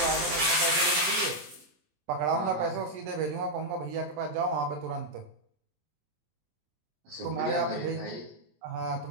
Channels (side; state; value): left; late; 23 ms